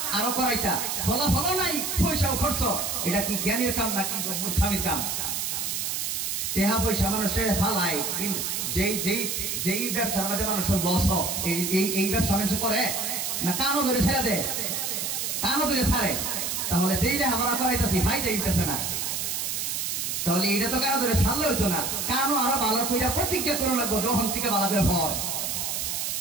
আরো করাইতা, ফলাফল নাই, পয়সাও খরচ। এটা কি জ্ঞানের কাম নাকি মূর্খামির কাম? টেহা পয়সা মানুষের ফালাই, যেই ব্যবসার মধ্যে মানুষের লস এই ব্যবসা মানুষ করে না, কানও ধরে ছেড়ে দেয়, কানও ধরে ছাড়ে। তাহলে যেই লেখাপড়া করাইতেছি ভাই যাইতেছে না, তাহলে এটা তো কারো ধরে ছাড়লে হইতো না, কানও আরো ভালো করে প্রতিজ্ঞা করে লাগবো যখন থেকে ভালো করে ফল।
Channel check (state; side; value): noise; right; hiss, 1 dB below the sound